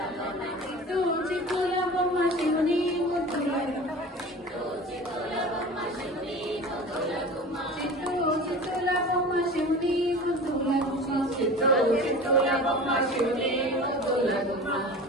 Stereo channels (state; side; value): normal; both; correlation 0.36